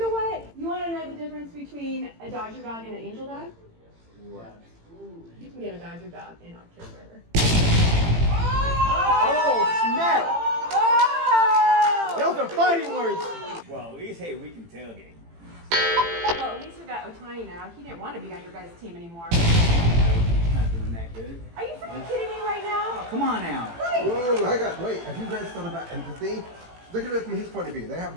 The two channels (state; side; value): late; left; 18 ms